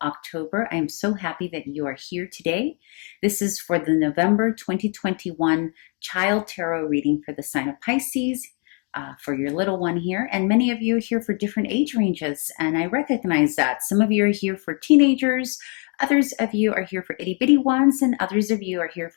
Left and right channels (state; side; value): quieter; right; 37.6 dB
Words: October. I am so happy that you are here today. This is for the November 2021 Child Tarot reading for the sign of Pisces, for your little one here. And many of you are here for different age ranges, and I recognize that. Some of you are here for teenagers, others of you are here for itty bitty ones, and others of you are here